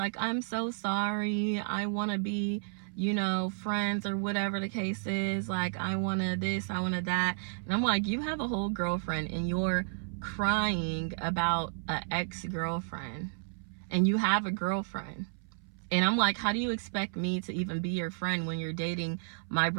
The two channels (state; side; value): silent; left; 57 dB below the other